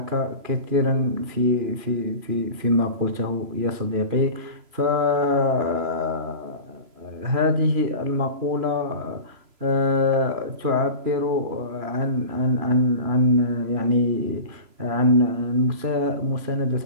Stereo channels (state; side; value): late; left; 3.0 ms